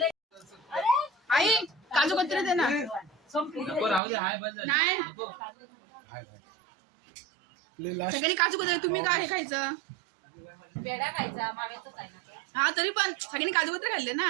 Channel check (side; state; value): left; drops out; at 4.0 s